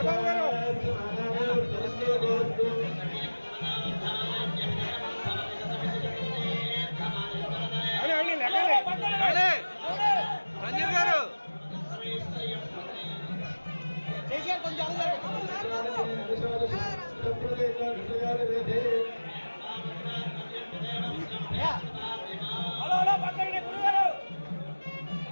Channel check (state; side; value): inverted; both; correlation -1.00